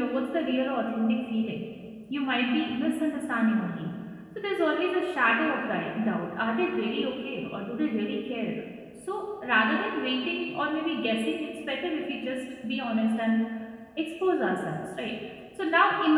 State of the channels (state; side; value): identical; both; correlation 1.00